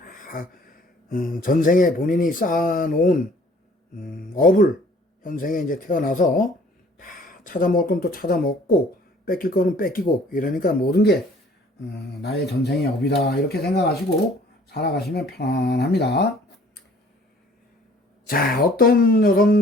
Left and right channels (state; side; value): normal; both; correlation 0.55